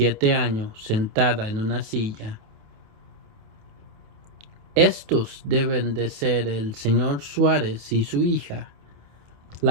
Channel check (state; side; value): late; left; 28 ms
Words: años sentada en una silla. Estos deben de ser el señor Suárez y su hija.